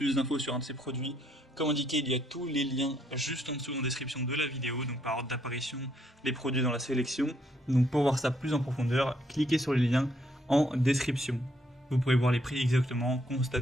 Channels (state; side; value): normal; both; correlation 0.71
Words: d'infos sur un de ces produits, comme indiqué, il y a tous les liens juste en dessous en description de la vidéo, donc par ordre d'apparition, les produits dans la sélection. Donc pour voir ça plus en profondeur, cliquez sur les liens en description. Vous pourrez voir les prix exactement,